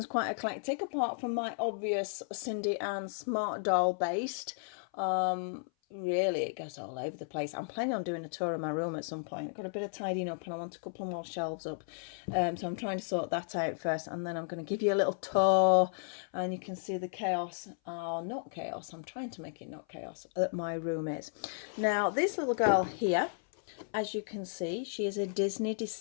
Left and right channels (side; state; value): right; silent; 55 dB below the other